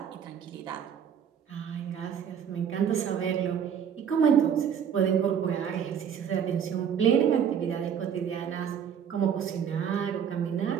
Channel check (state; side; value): quieter; left; 8.0 dB